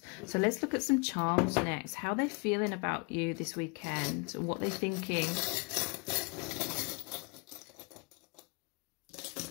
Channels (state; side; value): quieter; right; 31.6 dB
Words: So let's look at some charms next. How they're feeling about you this weekend, what they're thinking.